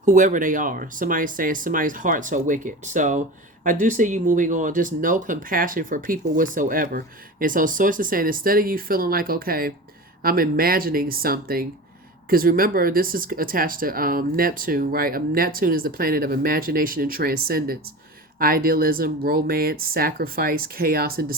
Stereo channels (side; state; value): both; normal; correlation 0.31